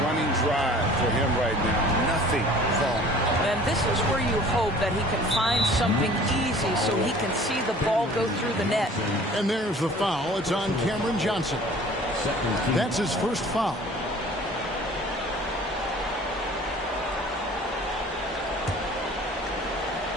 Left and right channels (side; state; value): both; normal; correlation 0.48